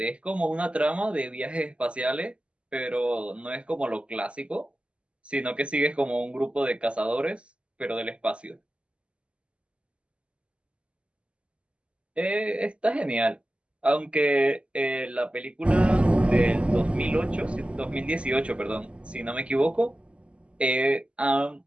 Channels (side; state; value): left; late; 0.056 ms